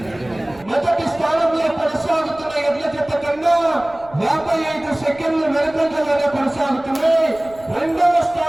మొదటి స్థానంలో కొనసాగుతున్న ఎడ్ల జత కన్నా 55 సెకండ్లు వెనుకంజలోనే కొనసాగుతున్నాయి. రెండవ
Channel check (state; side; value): noise; right; rumble, 23 dB below the sound